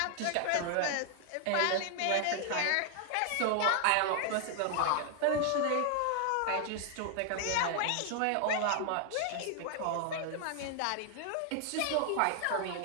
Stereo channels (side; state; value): both; different; correlation 0.00